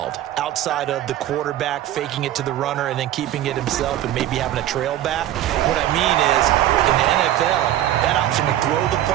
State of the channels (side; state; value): left; quieter; 12.8 dB